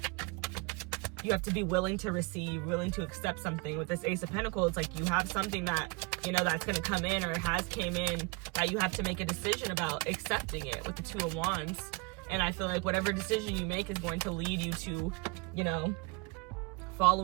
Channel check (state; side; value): quieter; left; 28.2 dB